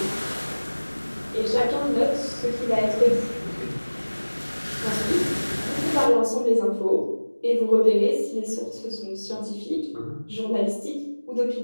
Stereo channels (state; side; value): inverted; both; correlation -1.00